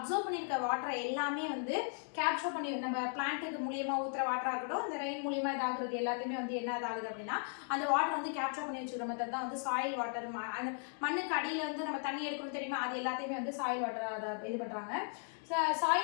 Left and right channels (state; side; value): silent; right; 53 dB below the other